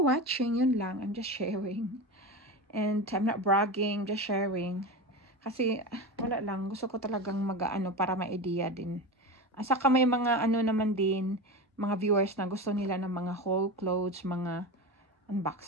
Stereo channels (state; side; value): normal; both; correlation 0.24